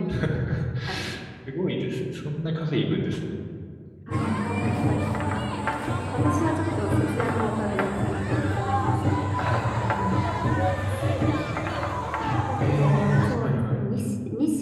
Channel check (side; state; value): both; identical; correlation 1.00